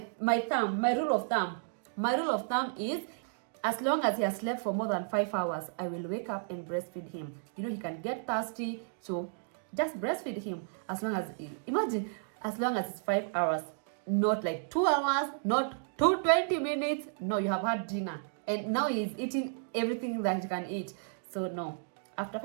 rule of thumb is, as long as he has slept for more than 5 hours, I will wake up and breastfeed him. You know, he can get thirsty, so just breastfeed him. As long as it's 5 hours, not like 2 hours, not 20 minutes. No, you have had dinner, and now he's eating everything that he can eat. So no, after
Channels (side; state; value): left; silent; digital silence